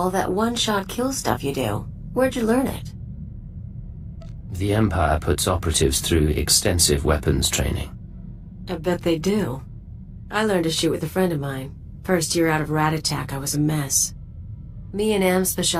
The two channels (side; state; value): both; identical; correlation 1.00